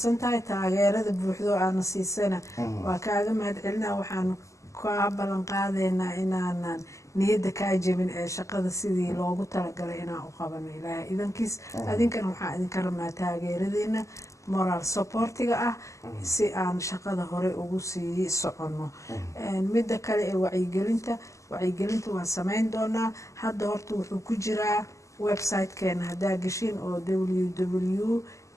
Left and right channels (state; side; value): late; right; 0.15 ms